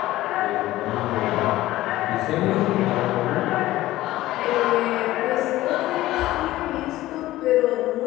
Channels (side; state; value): right; quieter; 16.2 dB